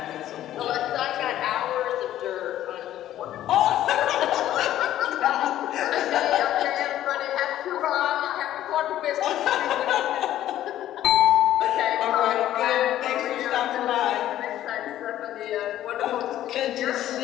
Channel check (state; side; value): quieter; right; 12.7 dB